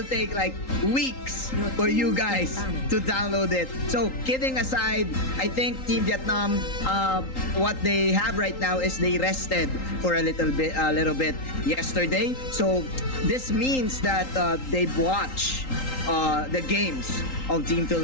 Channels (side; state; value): right; late; 3.8 ms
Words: take like weeks for you guys to download it. So kidding aside, I think Team Vietnam, what they have right now is they rested for a little bit yesterday. So this means that they've watched the games of Team